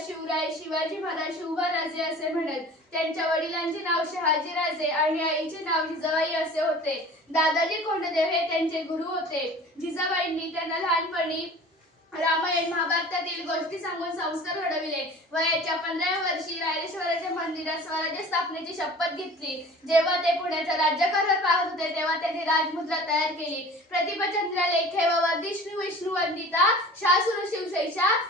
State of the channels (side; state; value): both; normal; correlation 0.42